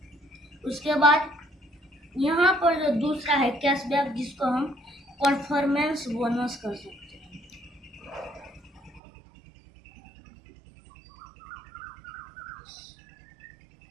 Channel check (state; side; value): drops out; left; at 9.0 s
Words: उसके बाद यहाँ पर जो दूसरा है कैशबैक, जिसको हम परफॉर्मेंस बोनस कर सकते हैं,